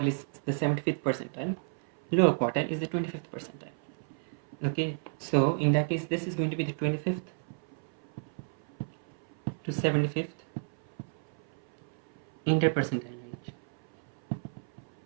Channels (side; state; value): left; silent; 56 dB below the other